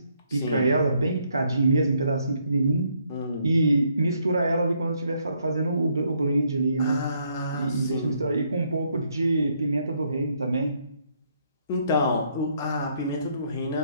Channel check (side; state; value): both; inverted; correlation -0.71